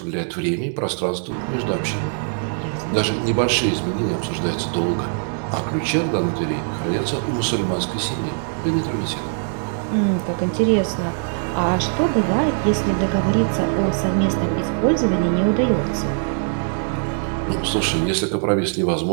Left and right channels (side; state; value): left; silent; digital silence